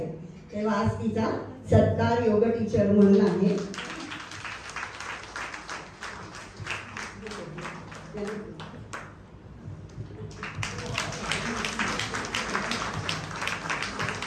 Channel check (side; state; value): both; identical; correlation 1.00